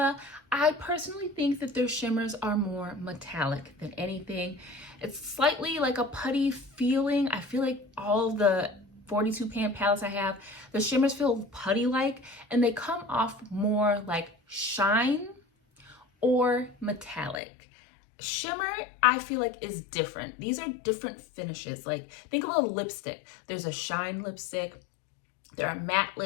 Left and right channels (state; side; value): drops out; right; at 17.4 s